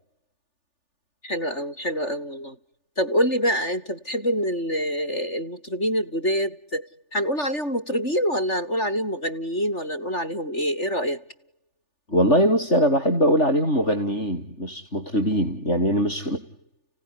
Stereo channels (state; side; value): late; right; 3.4 ms